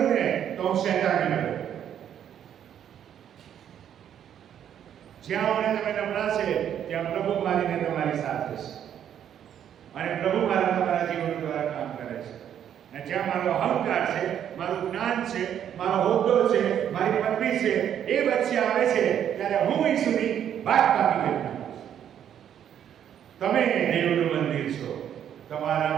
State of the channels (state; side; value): quieter; left; 9.6 dB